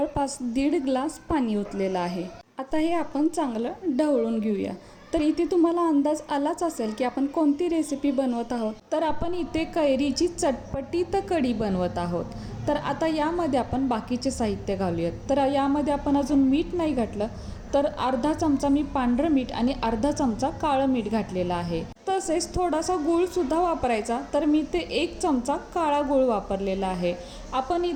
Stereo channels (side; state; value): both; identical; correlation 1.00